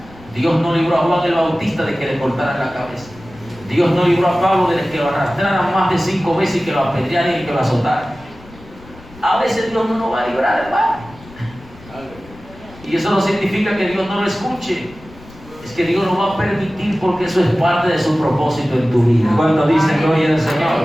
Dios no libró a Juan el Bautista de que le cortaran la cabeza. Dios no libró a Pablo de que lo arrastraran más de 5 veces y que lo apedrearan y que lo azotaran. A veces Dios no nos va a librar, hermano. Y eso no significa que Dios no lo escuche. Es que Dios lo va a permitir porque eso es parte de su propósito en tu vida. Cuando dicen gloria al Señor.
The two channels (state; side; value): noise; left; rumble, 21 dB below the sound